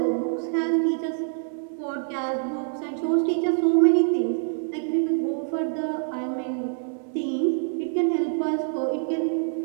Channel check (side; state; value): left; silent; 61 dB below the other